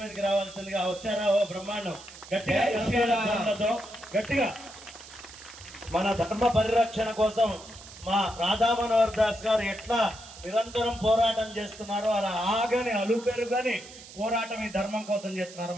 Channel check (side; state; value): right; noise; hiss, 17 dB below the sound